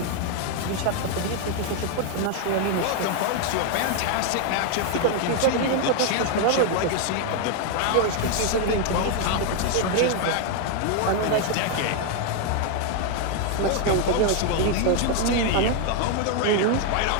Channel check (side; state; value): both; different; correlation 0.00